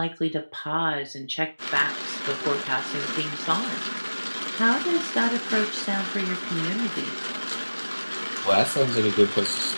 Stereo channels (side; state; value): both; inverted; correlation -1.00